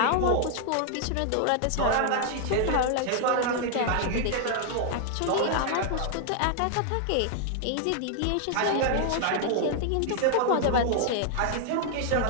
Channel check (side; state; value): both; different; correlation 0.00